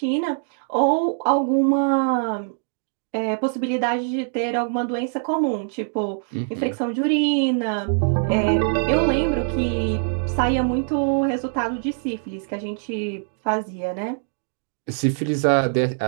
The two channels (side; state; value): left; silent; digital silence